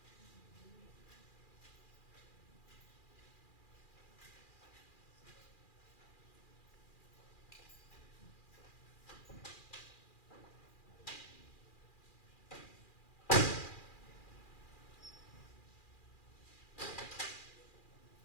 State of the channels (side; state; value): right; late; 2.4 ms